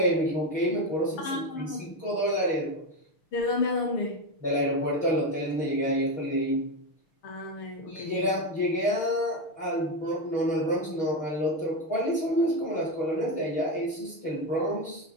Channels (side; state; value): right; late; 6.5 ms